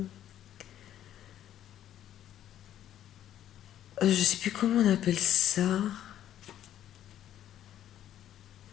je sais plus comment on appelle ça.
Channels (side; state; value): right; quieter; 11.4 dB